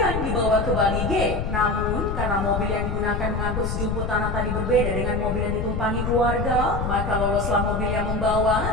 dibawa ke Bali G. Namun, karena mobil yang digunakan mengangkut sejumput tanah tadi berbeda dengan mobil yang ditumpangi keluarga, maka loloslah mobil yang membawa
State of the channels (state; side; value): noise; left; rumble, 2 dB below the sound